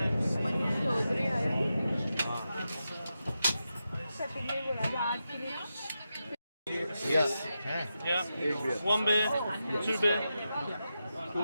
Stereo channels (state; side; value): inverted; both; correlation -0.89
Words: Yes. Yeah. One beer, two beer.